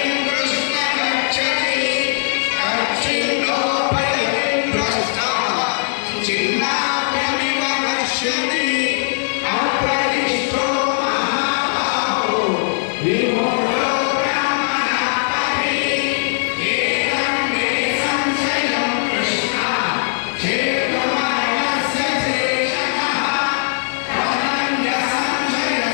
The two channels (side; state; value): right; silent; digital silence